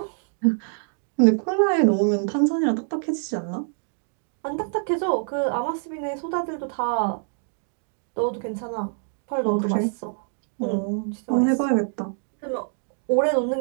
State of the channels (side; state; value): left; silent; 62 dB below the other